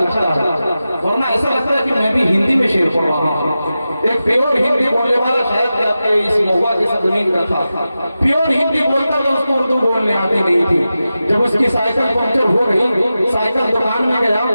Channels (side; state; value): both; inverted; correlation -0.93